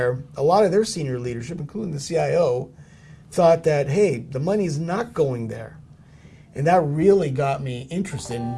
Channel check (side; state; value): both; identical; correlation 1.00